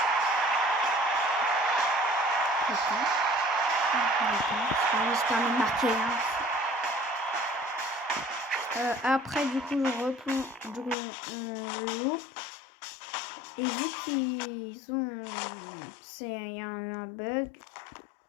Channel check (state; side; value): drops out; right; at 11.0 s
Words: J'espère me marquer. Après, du coup, je replonge, on loupe. Et vu qu'ils ont... il y a un bug.